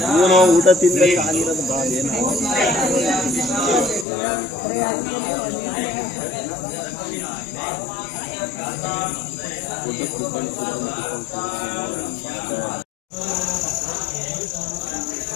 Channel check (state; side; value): drops out; right; at 4.0 s